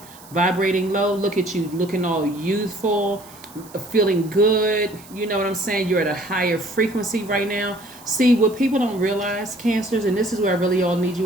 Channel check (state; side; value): noise; right; hiss, 21 dB below the sound